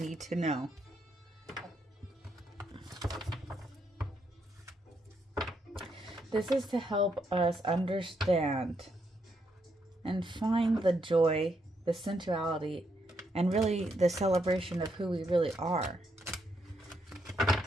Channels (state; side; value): normal; both; correlation 0.78